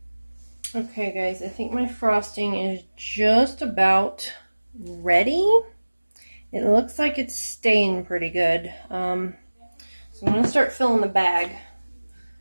Okay, guys, I think my frosting is just about ready. It looks like it's staying pretty good. So I'm going to start filling the bag.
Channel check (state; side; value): inverted; both; correlation -1.00